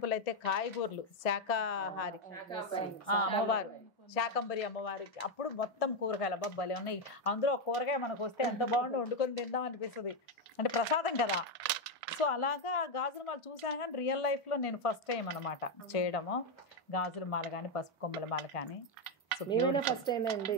అయితే కాయగూరలు, శాకాహారి అమ్మవారు, శాకంబరి అమ్మవారికి అప్పుడు మొత్తం కూరగాయలు అబ్బాయి ఉన్నాయి. అందులో ఒక కూరగాయ మనకు వస్తే ఎంత బాగుండి వండుకొని తిందాం అనిపిస్తుంది, అంటే ప్రసాదం కదా. సో అలాగా గాజుల మాల చూసాను, కానీ రియల్ లైఫ్లో నేను ఫస్ట్ టైం అనమాట చేయడము గాజుల మాల కానీ పసుపు కొమ్మల మాల కానీ. ఫస్ట్ టైం అండి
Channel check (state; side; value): normal; both; correlation 0.05